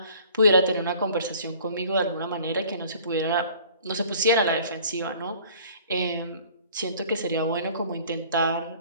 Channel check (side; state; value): both; inverted; correlation -0.52